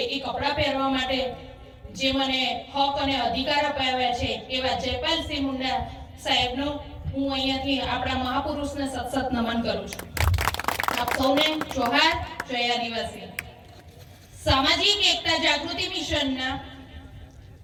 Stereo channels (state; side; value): identical; both; correlation 1.00